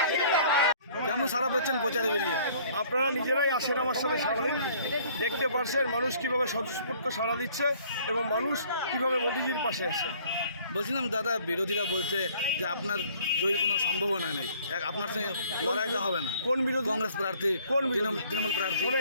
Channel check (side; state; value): both; inverted; correlation -0.56